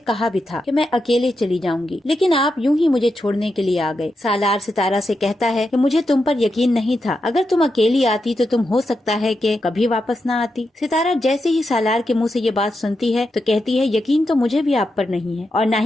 कहा भी था कि मैं अकेले चली जाऊंगी, लेकिन आप यूं ही मुझे छोड़ने के लिए आ गए। सालार सितारा से कहता है कि मुझे तुम पर यकीन नहीं था, अगर तुम अकेली आती तो तुम हो सकता है कि कभी वापस ना आती। सितारा जैसे ही सालार के मुँह से ये बात सुनती है तो कहती है, यकीन तो मुझे भी आप पर नहीं है और ना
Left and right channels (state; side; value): normal; both; correlation 0.86